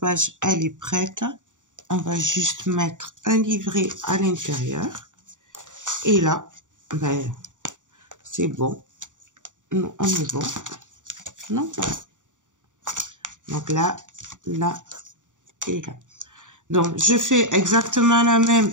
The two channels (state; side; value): late; left; 0.86 ms